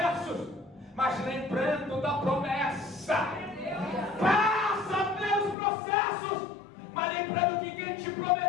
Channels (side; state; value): right; drops out; at 5.6 s